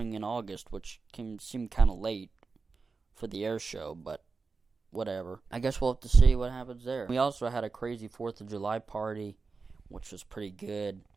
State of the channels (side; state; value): left; quieter; 4.4 dB